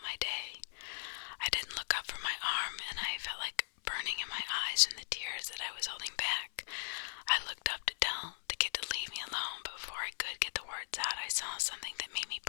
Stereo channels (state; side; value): silent; right; 52 dB below the other